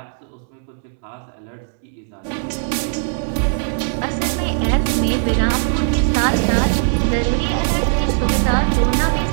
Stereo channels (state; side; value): silent; left; digital silence